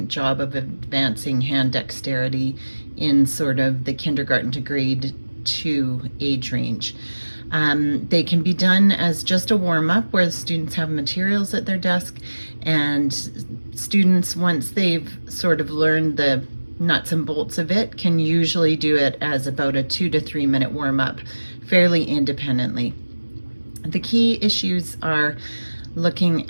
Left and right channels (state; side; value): inverted; both; correlation -1.00